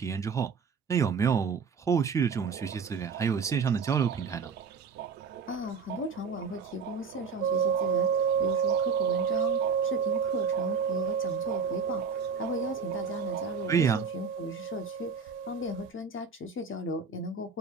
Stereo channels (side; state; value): left; quieter; 5.6 dB